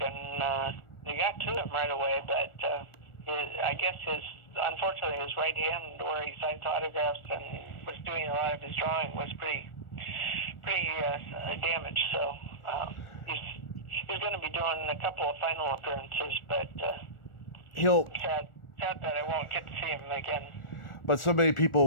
and they got to him right away, but I guess unfortunately his right hand, where he signs autographs and was doing a lot of his drawing, was pretty damaged. So he's going to be doing a couple of final appearances, but he'll sad that I won't get to see him again. But so many people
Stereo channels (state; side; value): late; right; 1.4 ms